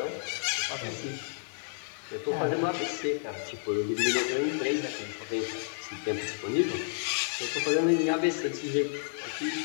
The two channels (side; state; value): right; silent; 57 dB below the other